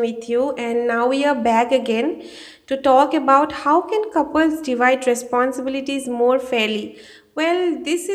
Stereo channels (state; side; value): identical; both; correlation 1.00